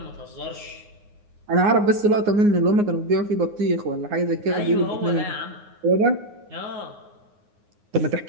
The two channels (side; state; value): left; late; 9.6 ms